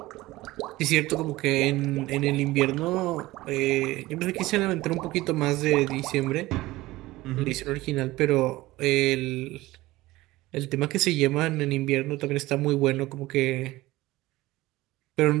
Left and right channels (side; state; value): left; quieter; 18.5 dB